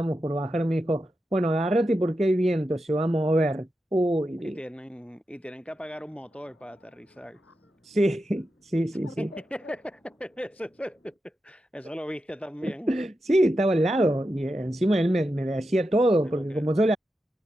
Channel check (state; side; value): normal; both; correlation 0.89